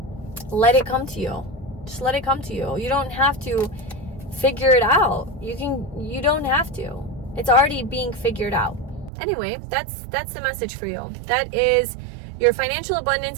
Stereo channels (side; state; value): left; drops out; at 9.1 s